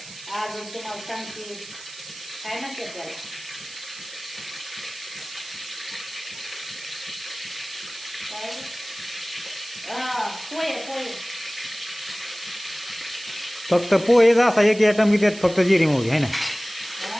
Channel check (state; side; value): noise; right; hiss, 15 dB below the sound